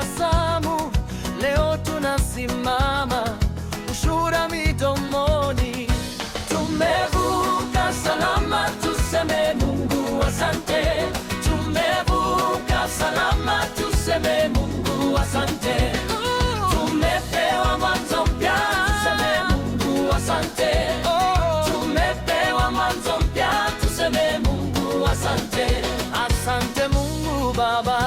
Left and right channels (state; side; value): identical; both; correlation 1.00